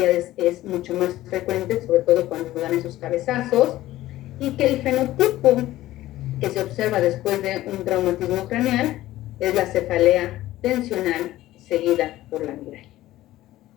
es mucho más frecuente, sobre todo cuando dan esos cabezazos, y que el fenotipo que se observa después de un traumatismo craneal es la cefalea tensional seguida por la migraña.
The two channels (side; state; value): right; quieter; 15.5 dB